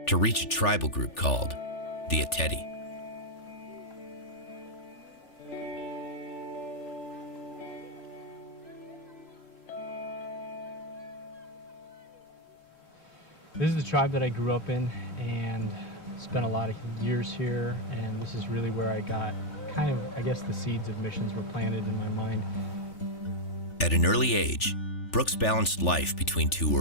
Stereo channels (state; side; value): late; right; 3.4 ms